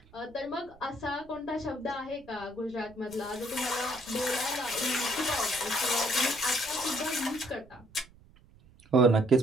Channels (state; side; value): noise; right; rumble, 25 dB below the sound